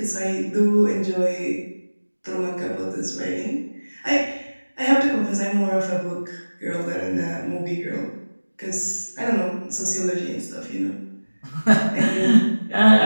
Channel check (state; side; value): inverted; both; correlation -1.00